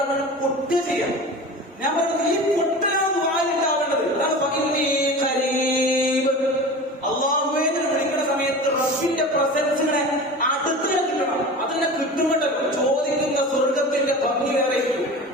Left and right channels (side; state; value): both; normal; correlation 0.34